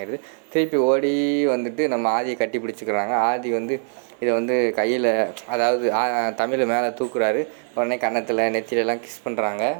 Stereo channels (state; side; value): silent; left; digital silence